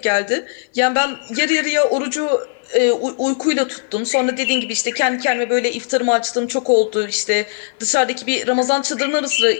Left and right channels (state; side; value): silent; right; digital silence